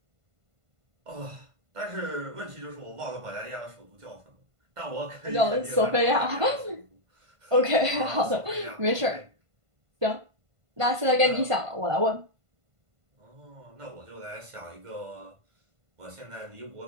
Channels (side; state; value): left; late; 1.5 ms